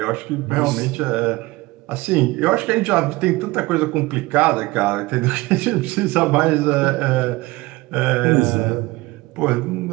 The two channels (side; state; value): left; quieter; 21.1 dB